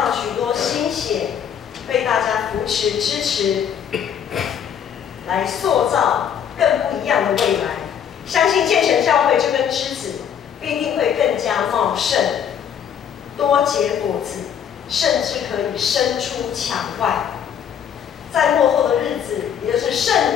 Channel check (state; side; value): quieter; right; 8.5 dB